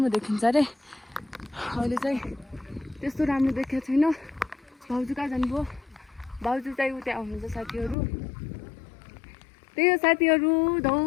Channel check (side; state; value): right; drops out; at 8.0 s